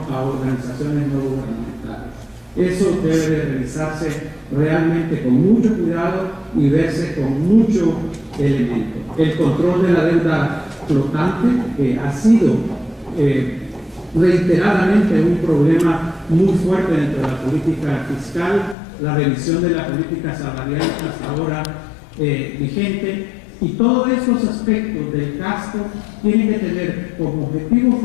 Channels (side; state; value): right; drops out; at 18.8 s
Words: a organizaciones no gubernamentales. Eso debe de revisarse realmente con mucho cuidado y verse con mucho elemento. El control de la deuda flotante, que ha sido reiteradamente un problema muy fuerte dentro de la política fiscal, la revisión de la política salarial hasta ahora vigente, y todos estos aspectos del gasto tienen que tener como objetivo